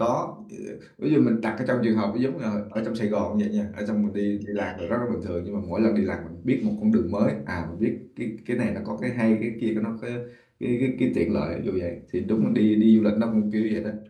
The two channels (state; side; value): identical; both; correlation 1.00